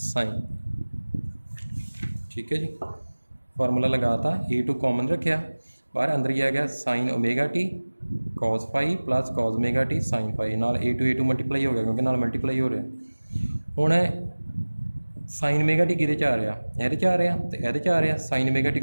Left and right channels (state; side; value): inverted; both; correlation -1.00